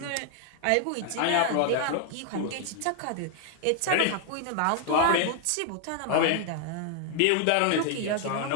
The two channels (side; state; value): both; different; correlation 0.00